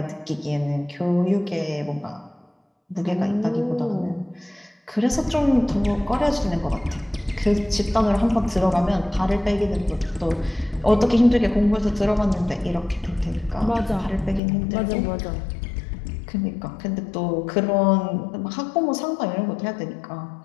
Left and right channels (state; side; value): drops out; right; at 14.4 s